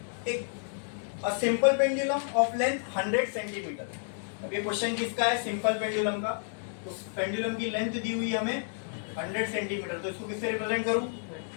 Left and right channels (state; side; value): silent; right; digital silence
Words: एक a simple pendulum of length 100 centimetre. अब ये क्वेश्चन किसका है? सिंपल पेंडुलम का। तो पेंडुलम की लेंथ दी हुई है हमें 100 सेंटीमीटर, तो इसको किससे रिप्रेजेंट करूं?